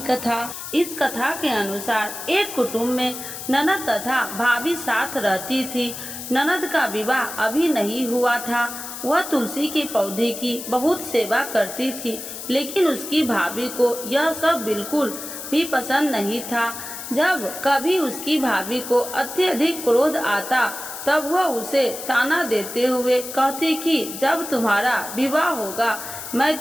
कथा। इस कथा के अनुसार एक कुटुंब में ननद तथा भाभी साथ रहती थी। ननद का विवाह अभी नहीं हुआ था। वह तुलसी के पौधे की बहुत सेवा करती थी, लेकिन उसकी भाभी को यह सब बिल्कुल भी पसंद नहीं था। जब कभी उसकी भाभी को अत्यधिक क्रोध आता तब वह उसे ताना देते हुए कहती कि जब तुम्हारा विवाह होगा मैं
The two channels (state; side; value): noise; left; hiss, 9 dB below the sound